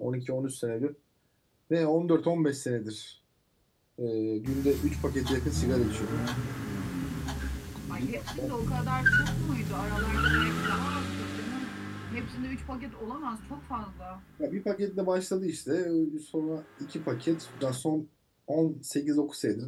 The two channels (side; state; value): both; identical; correlation 1.00